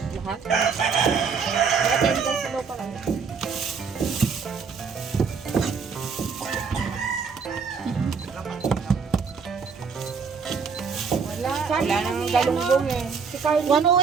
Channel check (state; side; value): quieter; left; 5.6 dB